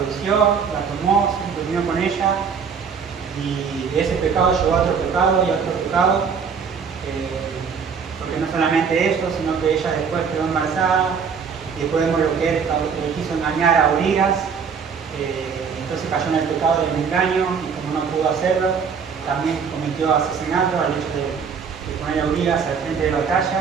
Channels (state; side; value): quieter; left; 6.3 dB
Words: la tomó, se durmió con ella, y de ese pecado llegó a otro pecado y a otro pecado, porque no solamente eso, sino que ella después quedó embarazada, y después vemos lo que él quiso engañar a Urias, entonces cayó en el pecado del engaño, y como no pudo hacerlo, también cometió asesinato al hecho de poner a Urias al frente de la